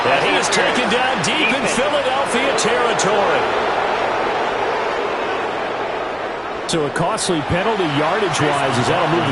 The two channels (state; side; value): identical; both; correlation 1.00